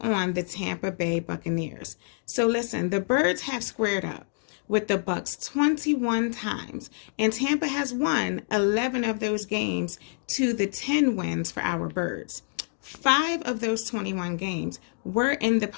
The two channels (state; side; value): silent; right; digital silence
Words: on the Tampa Bay Buccaneers. So listen, the Birds have squared up with the Bucs 21 times, and Tampa has won 11 of those games to the 10 wins for our Birds. 5 of those 21 games were in the